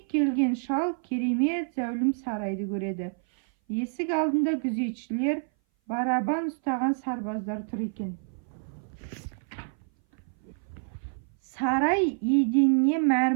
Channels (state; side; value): silent; left; 58 dB below the other